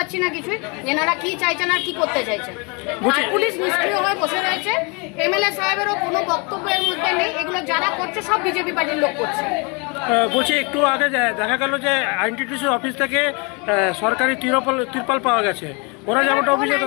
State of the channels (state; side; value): quieter; right; 31.6 dB